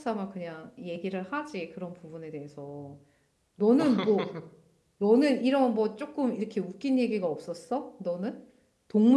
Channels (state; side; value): identical; both; correlation 1.00